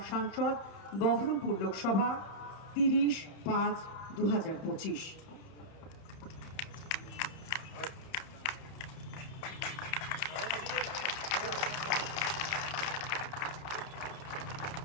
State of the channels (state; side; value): late; right; 31 ms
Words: সাংসদ, বহরমপুর লোকসভা, 30/5/2025।